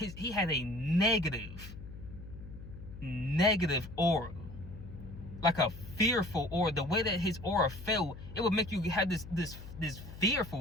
had a negative aura, like a fearful aura. The way that his aura felt, it would make you have this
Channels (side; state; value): left; noise; hum, 13 dB below the sound